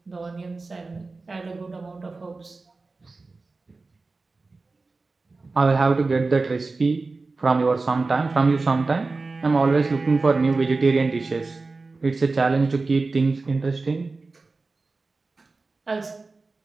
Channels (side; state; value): left; quieter; 3.7 dB